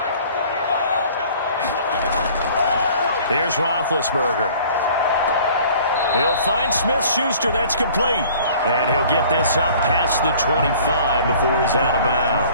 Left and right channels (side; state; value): both; inverted; correlation -0.51